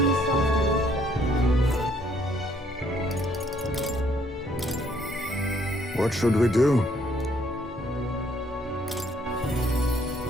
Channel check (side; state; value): both; normal; correlation 0.66